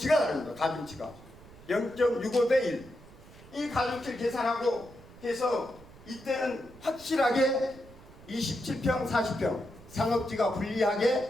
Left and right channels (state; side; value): noise; right; rumble, 21 dB below the sound